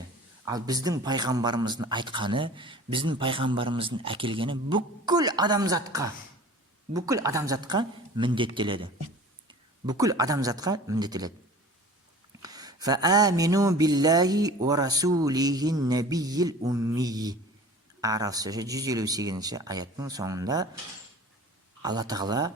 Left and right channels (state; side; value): normal; both; correlation 0.42